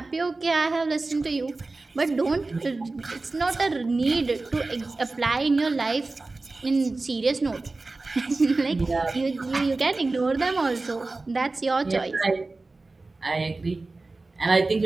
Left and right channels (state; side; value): quieter; left; 3.4 dB